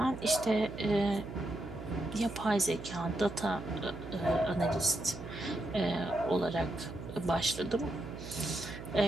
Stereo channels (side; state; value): right; noise; hum, 11 dB below the sound